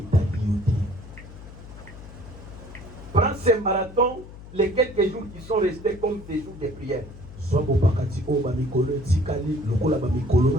Prends ces marathons, les quelques jours qui sont restés comme des jours de prière.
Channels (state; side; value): noise; left; hum, 16 dB below the sound